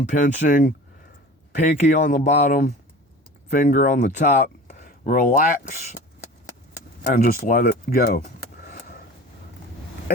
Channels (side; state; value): both; normal; correlation 0.38